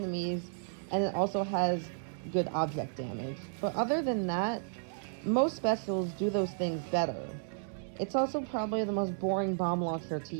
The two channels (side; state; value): left; silent; digital silence